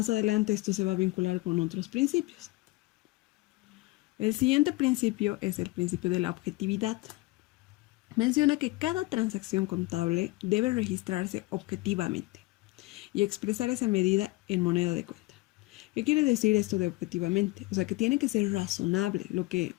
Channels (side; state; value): right; quieter; 21.7 dB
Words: adelante esto se va a vincular con otros principios. El siguiente principio es el principio de la objetividad. Menciona que cada transacción contable debe registrarse objetivamente y expresar esa medida en moneda de cuenta. ¿Qué quiere decir esto de objetivamente? O sea, que tiene que ser razonable. Lo que